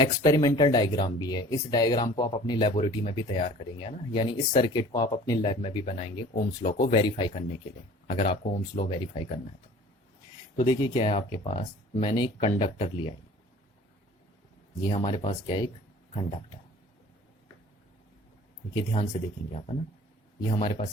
डायग्राम भी है। इस डायग्राम को आप अपनी लेबोरेटरी में भी तैयार करेंगे ना, यानी इस सर्किट को आप अपनी लैब में भी बनाएंगे ओम्स लॉ को वेरीफाई करने के लिए, अगर आपको ओम्स लॉ वेरीफाई करना है तो देखिए क्या है आपके पास, मैंने एक कंडक्टर लिया है, ये हमारे पास क्या है, एक कंडक्टर। देखिए ध्यान से देखेंगे आप, है ना, ये हमारे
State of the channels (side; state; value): both; normal; correlation 0.47